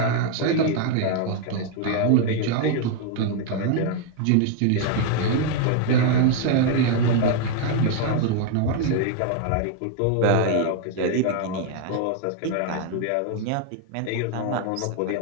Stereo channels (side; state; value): both; different; correlation 0.00